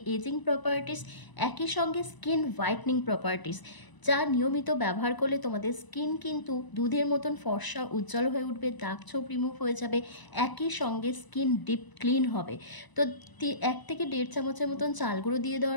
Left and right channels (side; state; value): right; late; 1.0 ms